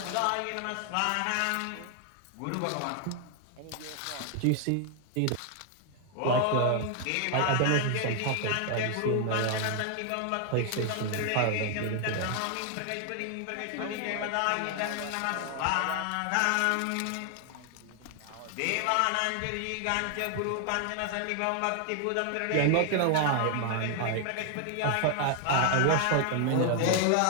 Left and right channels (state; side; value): different; both; correlation 0.00